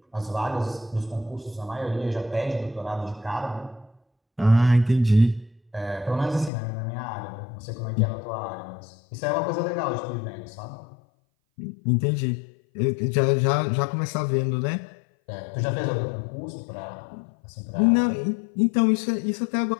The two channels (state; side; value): drops out; right; at 6.5 s